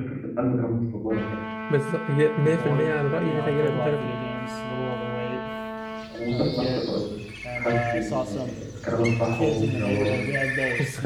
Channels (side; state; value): both; identical; correlation 1.00